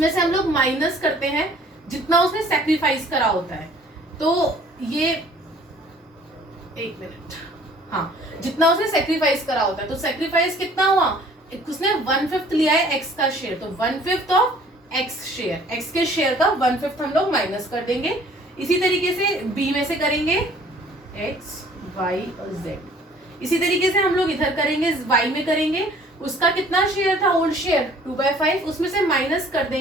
से हम लोग माइनस करते हैं जितना उसने सेक्रीफाइस करा होता है। तो ये एक मिनट, हाँ, जितना उसने सेक्रीफाइस करा होता है, तो सेक्रीफाइस कितना हुआ, उसने 1/5 लिया है एक्स का शेयर, तो 1/5 ऑफ एक्स शेयर, एक्स के शेयर का 1/5 हम लोग माइनस कर देंगे। इसी तरीके से बी में से करेंगे एक्स वाई और जेड। इसी तरीके से हम लोग इधर करेंगे, वाई में करेंगे, उसका कितना शेयर था ओल्ड शेयर 2/5, उसमें से माइनस कर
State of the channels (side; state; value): both; normal; correlation 0.54